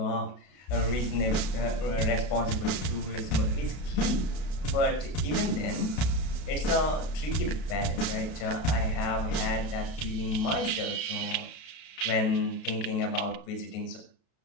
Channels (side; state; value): right; late; 32 ms